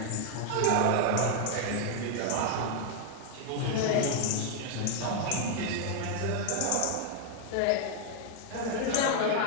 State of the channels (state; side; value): different; both; correlation 0.00